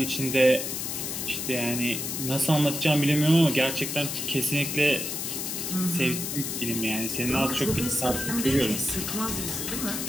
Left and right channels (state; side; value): noise; left; hiss, 4 dB below the sound